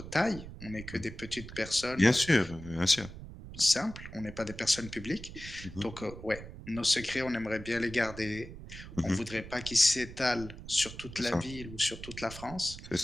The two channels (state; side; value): noise; right; rumble, 13 dB below the sound